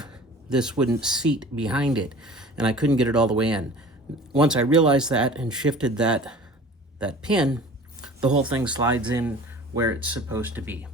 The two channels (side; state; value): both; normal; correlation 0.43